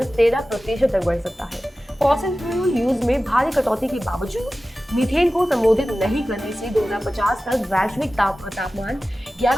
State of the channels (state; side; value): normal; both; correlation 0.95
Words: 13% तक बढ़ सकता है। फॉसिल फ्यूल यूज में भारी कटौती के बावजूद मीथेन को संबोधित नहीं करने से 2050 तक वैश्विक तापमान